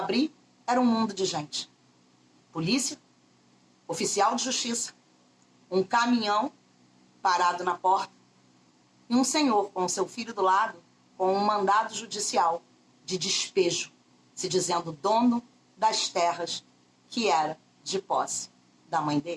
era um mundo de gente. Polícia, oficial de justiça, um caminhão parado na porta e um senhor com seu filho do lado com um mandado judicial de despejo, se dizendo dono das terras que era de posse da mãe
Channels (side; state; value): both; identical; correlation 1.00